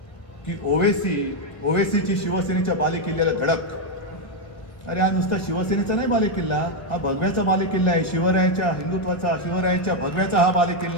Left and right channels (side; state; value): right; late; 1.5 ms